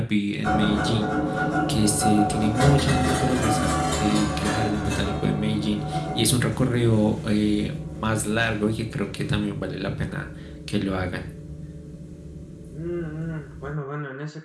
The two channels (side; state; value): both; identical; correlation 1.00